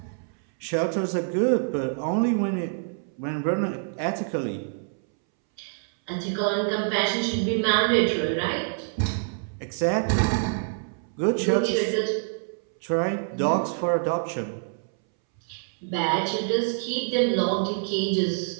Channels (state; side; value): silent; left; 61 dB below the other